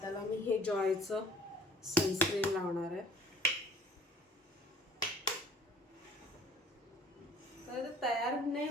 मी हे जॉयचं सनस्क्रीन लावणार आहे. तर तयार नाही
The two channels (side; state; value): both; normal; correlation 0.52